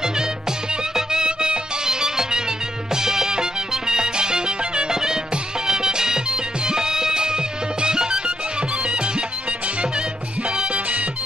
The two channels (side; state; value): both; normal; correlation 0.78